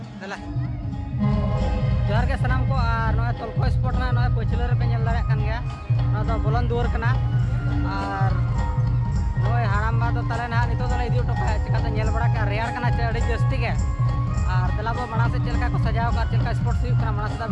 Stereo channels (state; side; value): identical; both; correlation 1.00